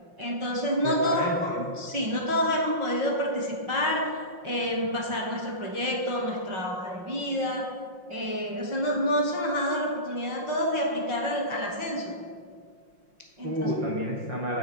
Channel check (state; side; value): late; left; 5.6 ms